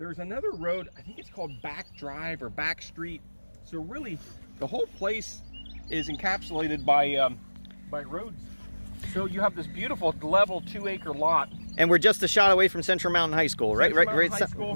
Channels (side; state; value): both; inverted; correlation -1.00